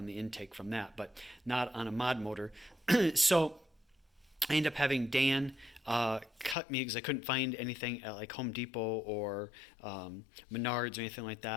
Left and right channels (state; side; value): drops out; right; at 6.6 s